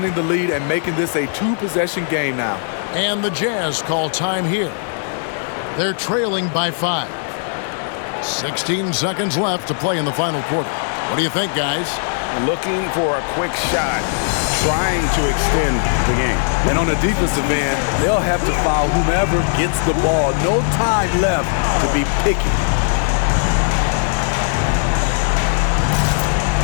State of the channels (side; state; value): right; silent; digital silence